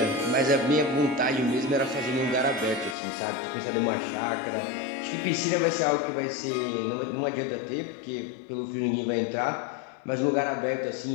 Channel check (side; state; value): right; drops out; at 3.0 s